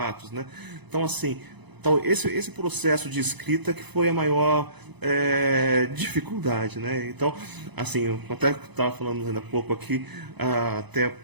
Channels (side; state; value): left; late; 0.99 ms